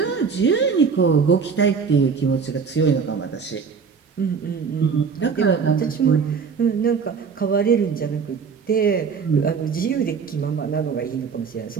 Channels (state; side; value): quieter; left; 5.8 dB